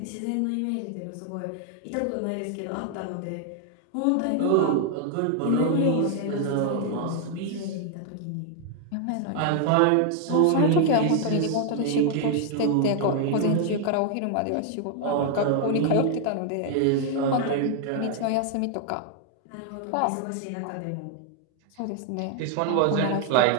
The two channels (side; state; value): both; different; correlation 0.00